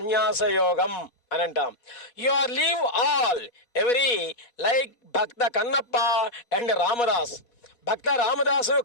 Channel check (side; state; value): right; late; 4.2 ms